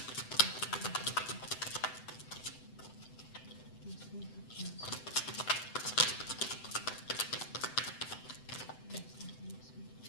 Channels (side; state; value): right; late; 7.9 ms